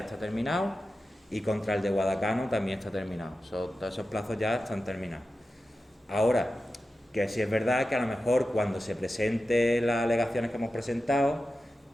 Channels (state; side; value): normal; both; correlation 0.92